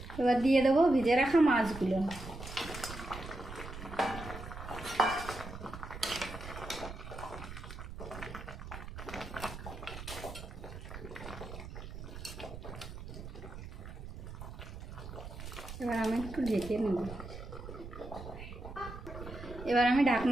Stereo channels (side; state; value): right; noise; rumble, 11 dB below the sound